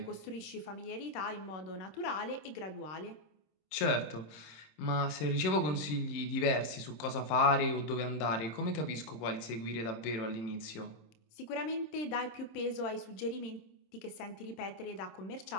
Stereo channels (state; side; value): late; right; 26 ms